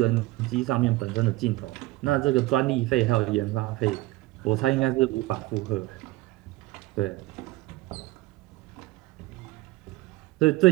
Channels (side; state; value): left; quieter; 18.6 dB